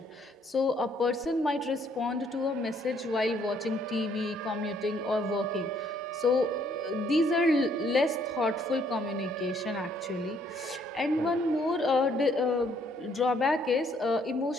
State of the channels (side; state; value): both; normal; correlation 0.66